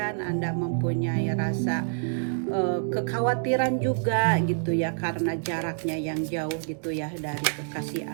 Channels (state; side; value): silent; left; digital silence